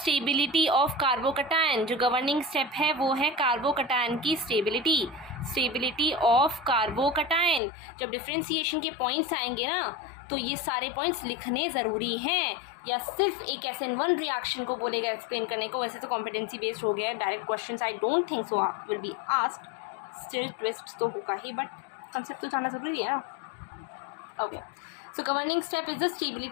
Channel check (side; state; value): right; drops out; at 7.6 s